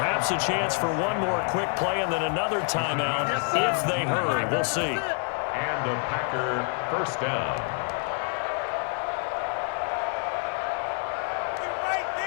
a chance for one more quick play and then another timeout if they hurry. We'll see. And a Packer first down.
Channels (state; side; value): quieter; right; 39.2 dB